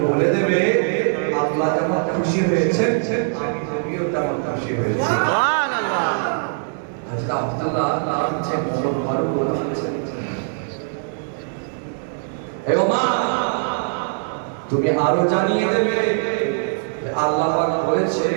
বলে দেবে আল্লাহ যেমন খুশি হয়েছেন আমি নবীও তেমন খুশি হয়েছি। সুবহানাল্লাহ। হযরত আব্দুল্লাহ নামছে ওমর ফারুক বলছেন, তুমি আরো জানিয়ে দেবে আল্লাহ পাক বলেছে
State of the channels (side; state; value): left; silent; digital silence